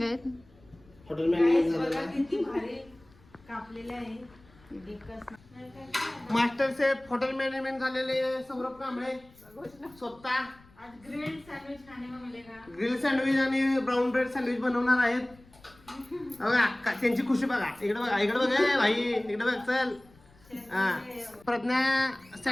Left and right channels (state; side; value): noise; left; rumble, 27 dB below the sound